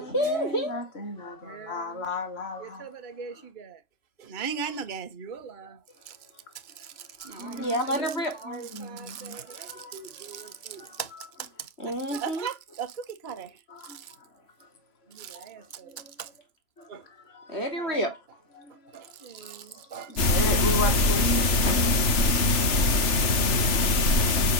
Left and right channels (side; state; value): right; late; 3.0 ms